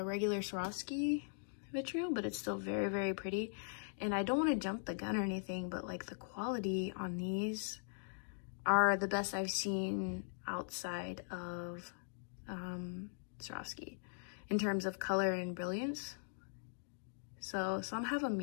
regular Swarovski vitriol, but it's still very, very pretty. And I don't want to jump the gun or anything, but like the quality on these are the best I've seen outside of Swarovski in terms of color and brilliance. So some have a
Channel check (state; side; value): silent; right; digital silence